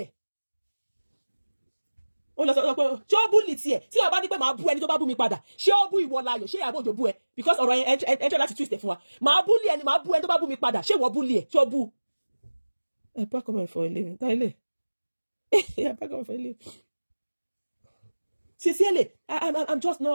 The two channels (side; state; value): both; inverted; correlation -1.00